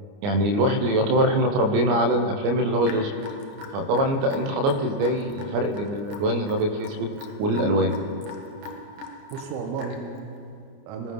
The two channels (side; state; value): left; late; 29 ms